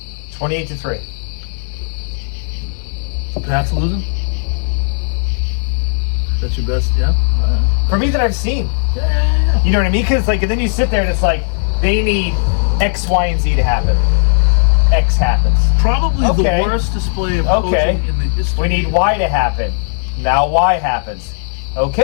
28-3. Pat's losing? That's your best, yeah? All right. For me that I've seen. Yeah. You know what I mean? Because and then you sit there and it's like, they need X, Y, and Z to happen. X happens. Probably Okay. the worst display of Okay. coaching in the history. We need Y to happen. Now Y happens.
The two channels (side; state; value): right; silent; digital silence